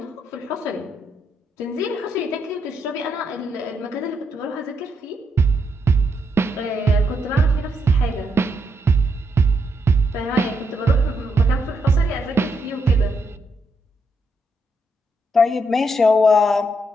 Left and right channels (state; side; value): normal; both; correlation 0.79